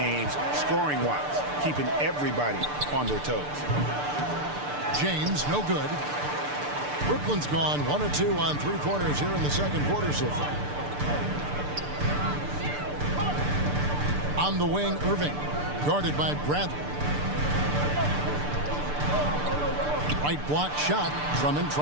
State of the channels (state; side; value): late; left; 6.8 ms